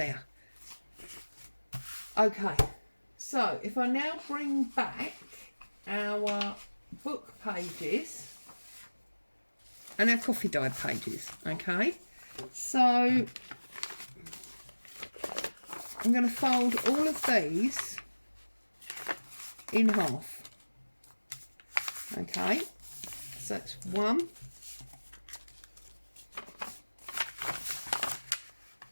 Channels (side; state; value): both; inverted; correlation -1.00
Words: Okay, so if I now bring back our book pages and our coffee dye pages, okay, so I'm going to fold all of these in half. Okay, so that's 1,